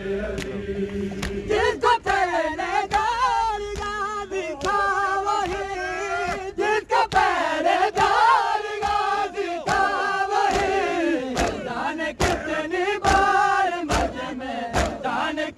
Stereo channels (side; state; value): both; identical; correlation 1.00